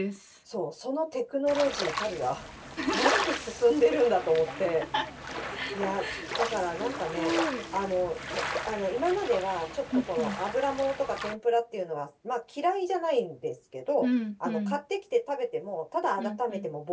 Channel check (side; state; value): both; identical; correlation 1.00